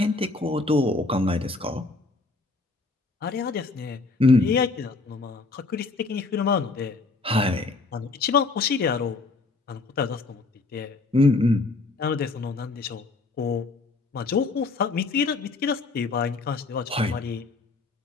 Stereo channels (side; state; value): right; quieter; 3.7 dB